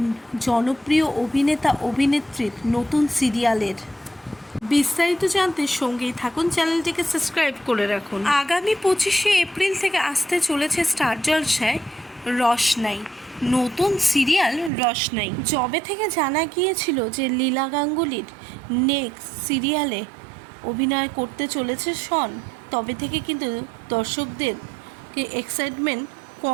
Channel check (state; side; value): drops out; left; at 14.7 s